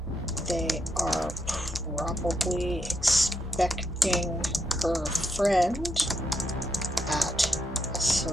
they are probably expecting her friend at a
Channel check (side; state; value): both; normal; correlation 0.80